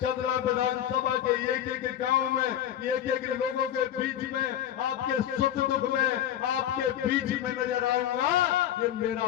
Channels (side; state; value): right; quieter; 10.9 dB